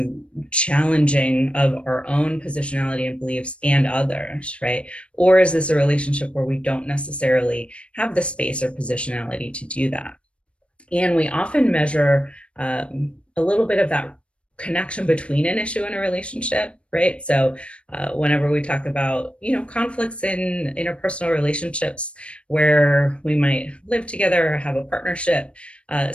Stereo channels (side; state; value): right; late; 0.060 ms